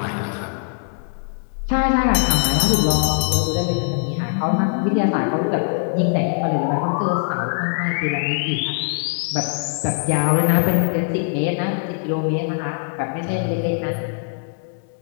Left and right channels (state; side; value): silent; right; digital silence